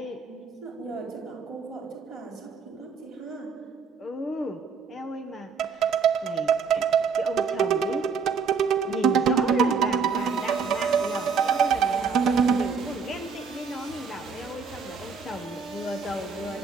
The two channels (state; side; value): quieter; left; 5.5 dB